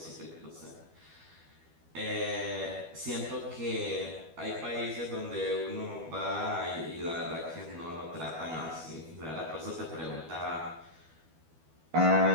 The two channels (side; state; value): left; late; 12 ms